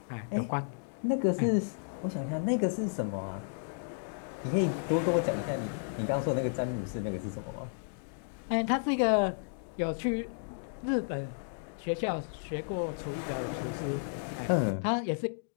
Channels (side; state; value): right; silent; digital silence